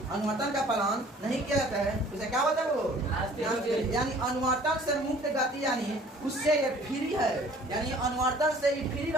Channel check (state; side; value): normal; both; correlation 0.52